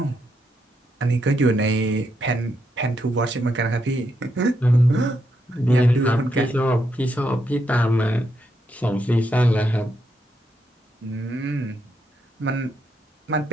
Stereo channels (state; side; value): normal; both; correlation 0.80